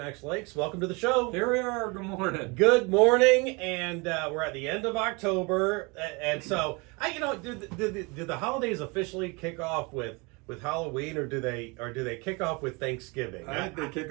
Lakes. Welcome to the show. Here we are. Good morning. Good morning, and we're at the end of October, and so did the holidays officially kick off with Halloween, or do they kick off with Thanksgiving? I think they kick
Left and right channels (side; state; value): left; quieter; 28.4 dB